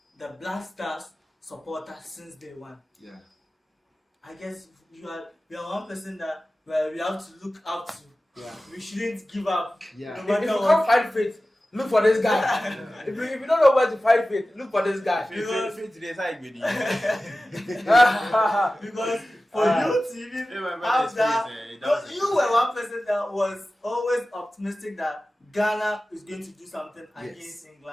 the Black Stars supporter since day one. Yeah. I guess you are one person that we have to look up to. Yeah. We shouldn't give up. Yeah. No If matter you what. can't find faith, look for this guy. if you don't know where to find faith, look for this guy. Because for you to even have that, because you were one person that was always optimistic that Ghana is going to do something against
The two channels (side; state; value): both; normal; correlation 0.96